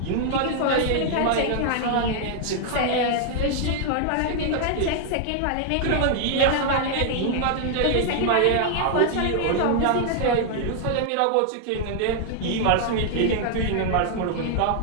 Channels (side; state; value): both; different; correlation 0.00